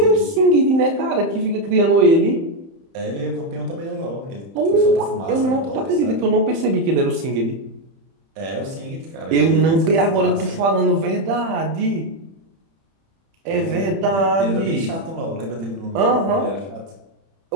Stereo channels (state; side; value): late; left; 31 ms